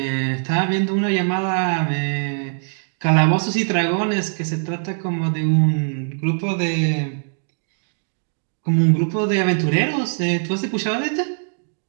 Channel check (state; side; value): silent; left; digital silence